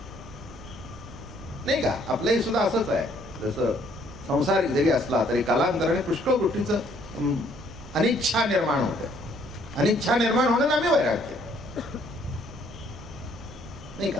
नाही का? आपलंही सुद्धा असंच आहे. जसं संसारिक जरी असला तरी कालांतराने पुष्कळ गोष्टीचं अनिच्छा निर्माण होते. अनिच्छा निर्माण होणं नामे वैराग्य, नाही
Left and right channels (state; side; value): noise; right; rumble, 16 dB below the sound